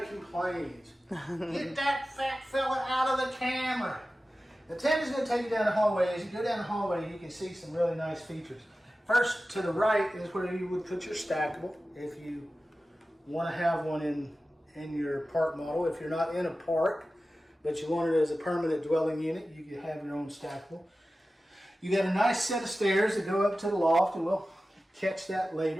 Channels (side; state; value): both; normal; correlation 0.95